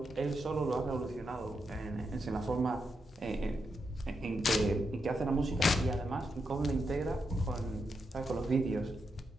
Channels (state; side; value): normal; both; correlation 0.84